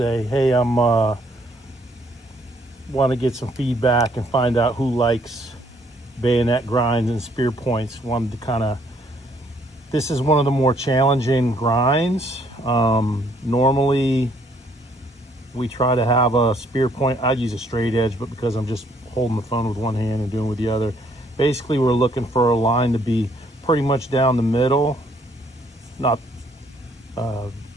Hey, I'm want to get some feedback and find out who likes bayonet grinds and spear points. Wanted to kind of, this is one of the more challenging grinds. Normally we try to have a spear point. I'd use a straight edge, but because I'm just holding the phone with one hand and doing it with the other, basically we're looking for a line to be pretty much down the middle, not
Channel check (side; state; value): both; normal; correlation 0.66